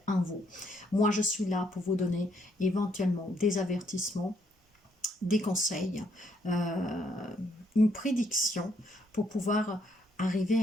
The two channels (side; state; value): both; normal; correlation 0.71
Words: en vous. Moi, je suis là pour vous donner éventuellement des avertissements, des conseils, une prédiction pour pouvoir arriver à